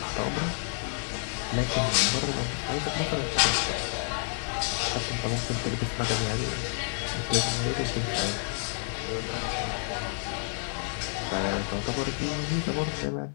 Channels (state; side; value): silent; right; digital silence